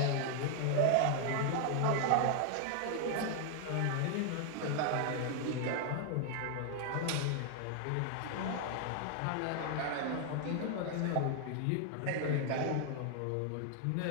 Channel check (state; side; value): different; both; correlation 0.00